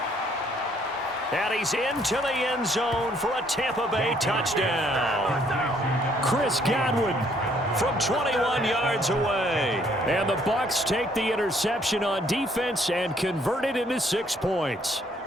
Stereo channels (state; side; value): normal; both; correlation 0.65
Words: And he's into the end zone for a Tampa Bay touchdown. Chris Godwin from 21 yards away. And the Bucs take the interception on defense and convert it into 6 points.